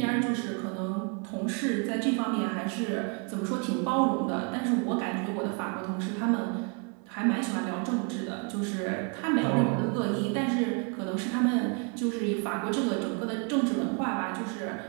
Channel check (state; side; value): quieter; left; 35.5 dB